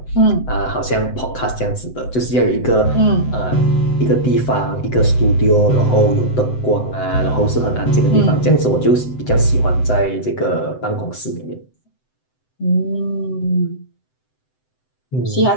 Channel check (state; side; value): late; right; 7.9 ms